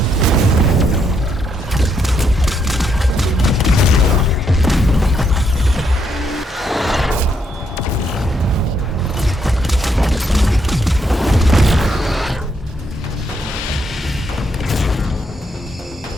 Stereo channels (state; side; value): normal; both; correlation 0.76